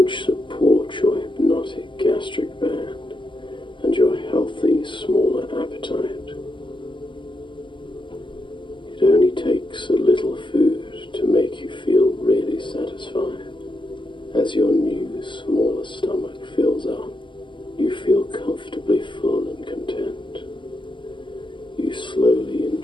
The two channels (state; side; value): late; right; 0.24 ms